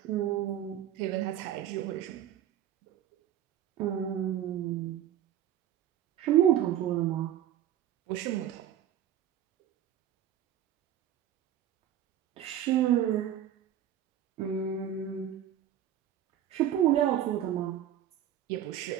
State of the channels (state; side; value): quieter; left; 10.9 dB